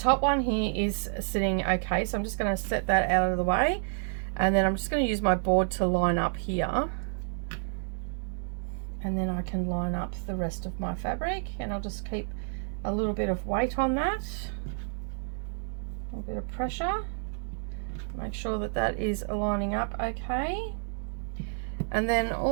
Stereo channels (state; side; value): silent; left; digital silence